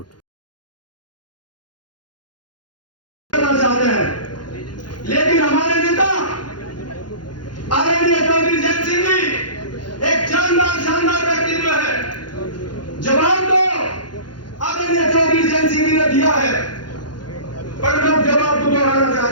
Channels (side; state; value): right; late; 0.71 ms